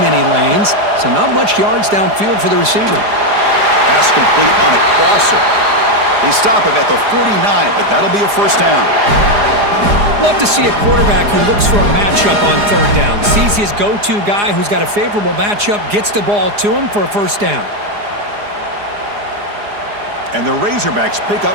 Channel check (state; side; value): late; left; 4.9 ms